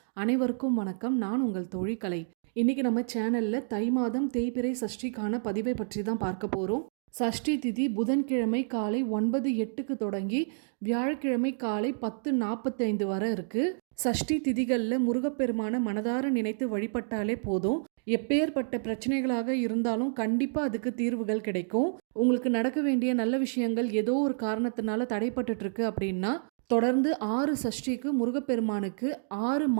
அனைவருக்கும் வணக்கம். நான் உங்கள் தோழி கலை. இன்னைக்கு நம்ம சேனல்ல தை மாதம் தேய்பிறை சஷ்டிக்கான பதிவை பற்றி தான் பார்க்க போறோம். சஷ்டி திதி புதன்கிழமை காலை 9:08க்கு தொடங்கி வியாழக்கிழமை காலை 10:45 வரை இருக்கு. சஷ்டி திதிகள்ல முருகப்பெருமான மனதார நினைத்து வழிபட்டாலே போதும். எப்பேற்பட்ட பிரச்சனைகளாக இருந்தாலும் கண்டிப்பா அதுக்கு தீர்வுகள் கிடைக்கும். உங்களுக்கு நடக்க வேண்டிய நல்ல விஷயங்கள் ஏதோ ஒரு காரணத்தினால தடைப்பட்டுட்டு இருக்கு அப்படின்னா தொடர்ந்து 6 சஷ்டிக்கு முருகப்பெருமானுக்கு 6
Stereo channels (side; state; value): left; silent; digital silence